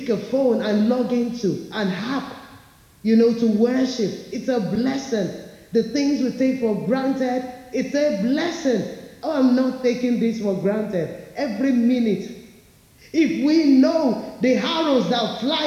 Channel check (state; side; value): identical; both; correlation 1.00